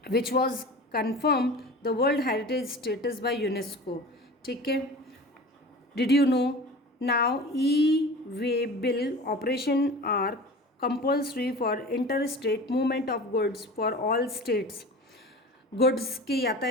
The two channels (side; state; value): both; normal; correlation 0.37